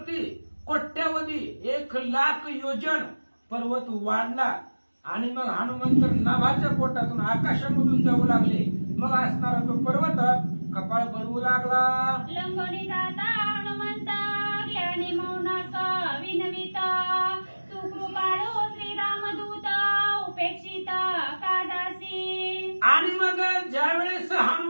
कोट्यावधी 1,00,000 योजन पर्वत वाढला. आणि मग हनुमंत नाभाच्या पोटातून आकाशामधून जाऊ लागले. मग असणारा तो पर्वत कपाळ बनवू लागला. लंगोनी जाता हनुमंत, ज्ञानी मौनाक विनविता, तू कृपाळू श्रीरामदूत, उपेक्षित काजासी. आणि मग ज्यावेळेस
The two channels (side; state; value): both; inverted; correlation -1.00